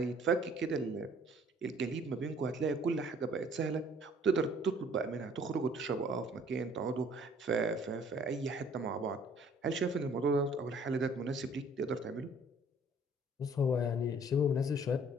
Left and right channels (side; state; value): both; normal; correlation 0.56